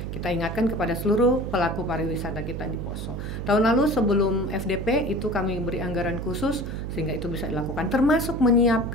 kita ingatkan kepada seluruh pelaku pariwisata kita di Poso. Tahun lalu sebelum FDP itu kami beri anggaran khusus sehingga itu bisa dilakukan, termasuk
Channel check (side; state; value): right; noise; hum, 6 dB below the sound